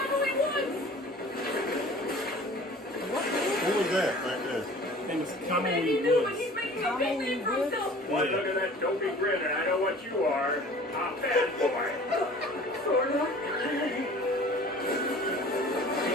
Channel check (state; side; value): normal; both; correlation 0.46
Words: Woods! Who was that right there? His name was Man, Kamui he knew it! Woods. He's making a big name for himself! Why, look at that dopey grin, and I know what you are. A bad boy. Sorta.